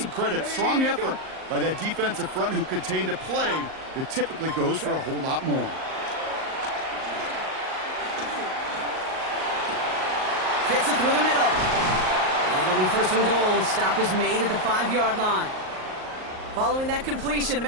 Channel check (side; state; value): left; late; 38 ms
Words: credit. Strong effort by that defensive front who contained a play that typically goes for a whole lot more. Fits it through the middle. And it'll be 1st and goal. Stop is made at the 5-yard line. Following that completion,